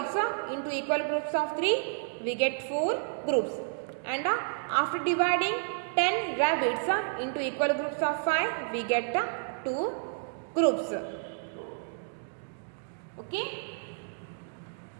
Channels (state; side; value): silent; left; digital silence